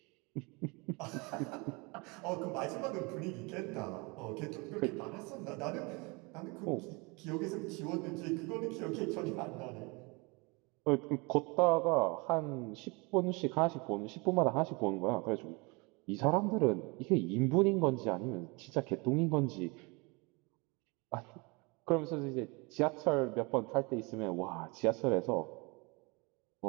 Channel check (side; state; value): left; quieter; 28.1 dB